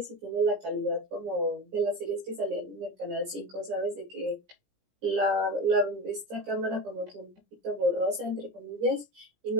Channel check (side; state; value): left; late; 17 ms